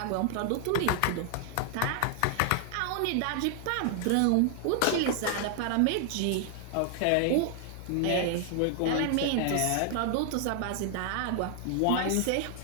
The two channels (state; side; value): different; both; correlation 0.00